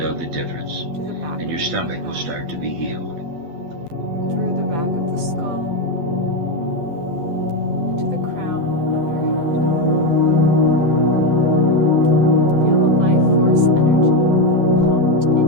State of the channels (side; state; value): left; late; 12 ms